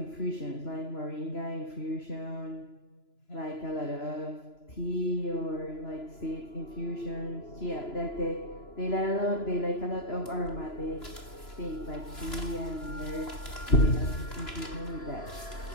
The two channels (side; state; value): right; late; 3.0 ms